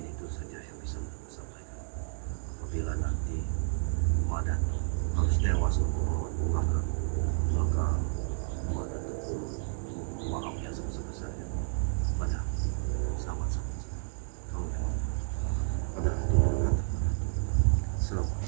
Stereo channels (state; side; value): silent; left; digital silence